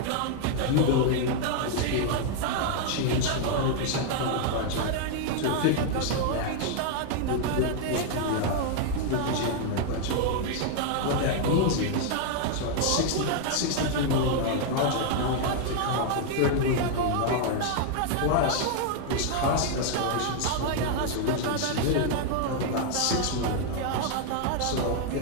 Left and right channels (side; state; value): both; different; correlation 0.00